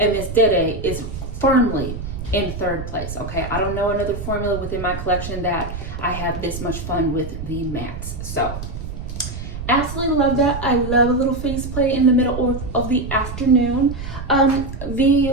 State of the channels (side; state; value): right; noise; rumble, 8 dB below the sound